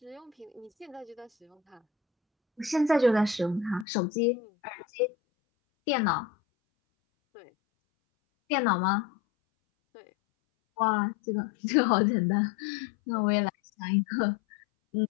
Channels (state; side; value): drops out; right; at 3.9 s